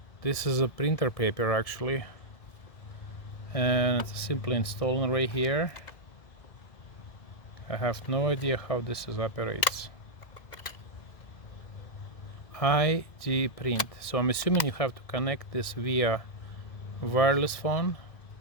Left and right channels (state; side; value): late; right; 1.7 ms